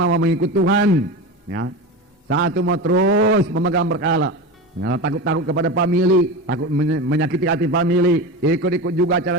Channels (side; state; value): both; normal; correlation 0.25